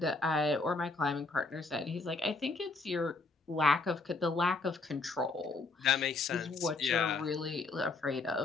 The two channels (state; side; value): quieter; right; 3.7 dB